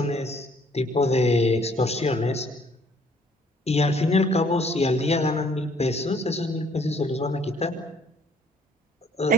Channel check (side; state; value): both; normal; correlation 0.61